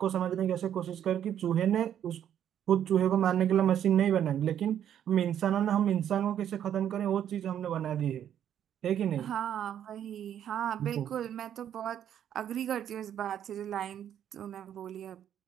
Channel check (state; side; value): quieter; left; 9.9 dB